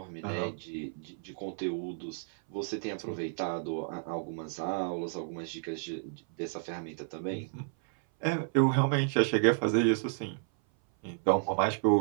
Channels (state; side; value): silent; left; 57 dB below the other